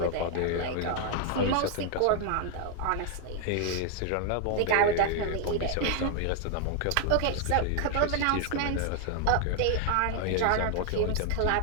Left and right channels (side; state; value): both; different; correlation 0.00